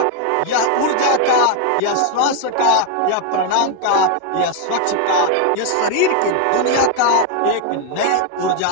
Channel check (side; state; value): both; different; correlation 0.01